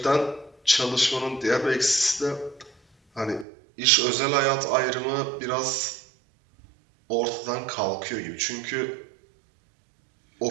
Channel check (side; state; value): left; drops out; at 3.5 s